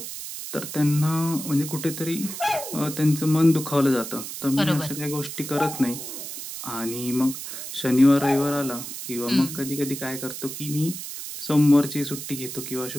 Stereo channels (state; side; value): noise; right; hiss, 8 dB below the sound